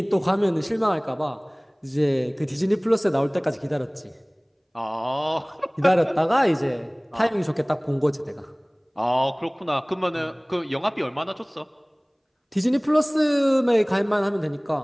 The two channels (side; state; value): both; identical; correlation 1.00